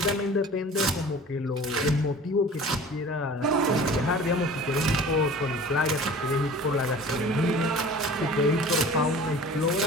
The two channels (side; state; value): both; normal; correlation 0.42